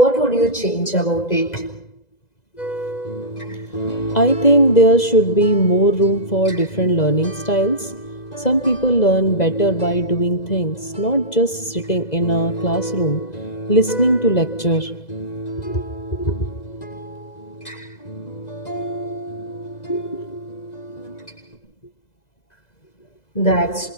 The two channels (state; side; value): late; right; 2.0 ms